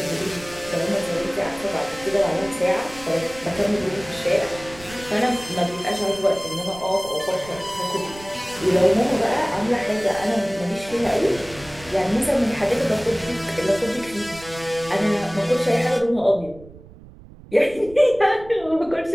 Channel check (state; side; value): noise; right; rumble, 20 dB below the sound